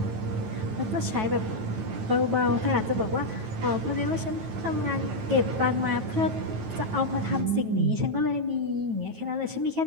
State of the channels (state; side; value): late; left; 9.2 ms